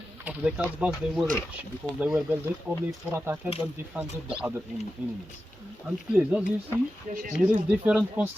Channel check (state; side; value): normal; both; correlation 0.92